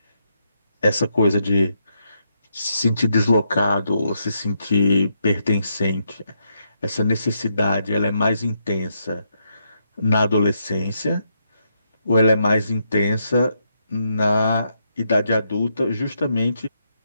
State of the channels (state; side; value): inverted; both; correlation -0.79